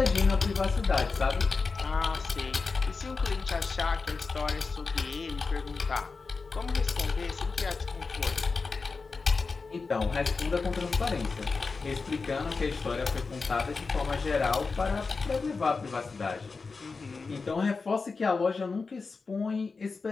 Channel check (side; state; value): right; quieter; 4.4 dB